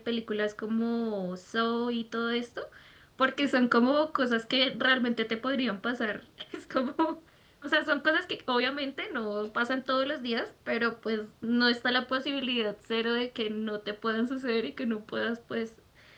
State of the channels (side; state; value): both; identical; correlation 1.00